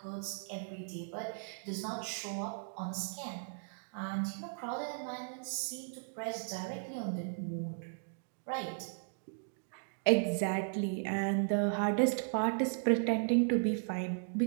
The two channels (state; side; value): silent; left; digital silence